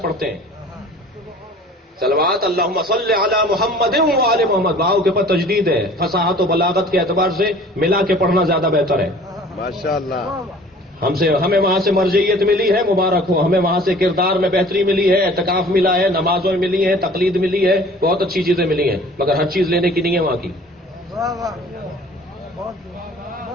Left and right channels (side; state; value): both; normal; correlation 0.48